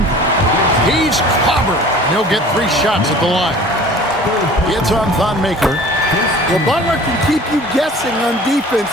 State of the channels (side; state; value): both; normal; correlation 0.45